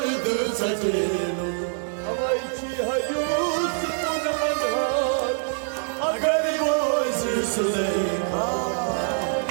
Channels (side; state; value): left; silent; digital silence